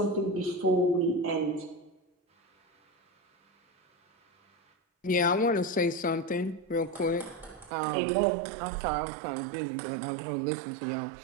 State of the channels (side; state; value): left; drops out; at 7.7 s